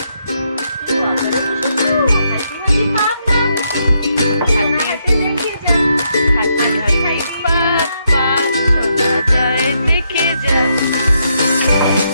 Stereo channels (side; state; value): both; inverted; correlation -0.77